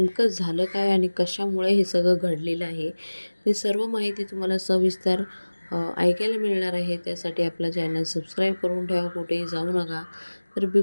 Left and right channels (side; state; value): both; inverted; correlation -1.00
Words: झालं काय आणि कशामुळे हे सगळं घडलेलं आहे, ते सर्व माहिती तुम्हाला सविस्तर ऐकायला मिळणार आहे. त्यासाठी आपला चॅनल सबस्क्राईब करून ठेवा, कुठेही जाऊ नका. तर